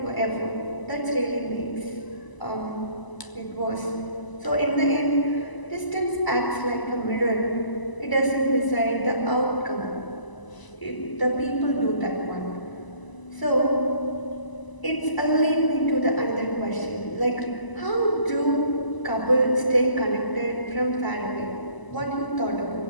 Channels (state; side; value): late; right; 1.0 ms